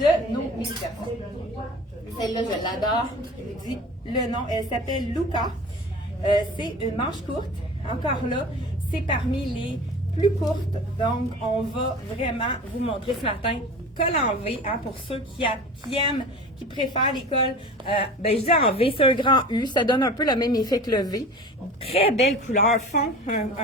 nos mini-personnes. Celle-là, je l'adore. Je vous dis le nom. Elle s'appelle Luca. C'est une manche courte. Encore là, c'est parmi les plus courtes. Donc, on va vraiment vous montrer ce matin col en V, hein, pour ceux qui aiment, qui préfèrent les cols. Je dis en V, c'est un grand U. Ça donne un peu le même effet que le V. Très belle couleur.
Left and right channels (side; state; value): both; normal; correlation 0.37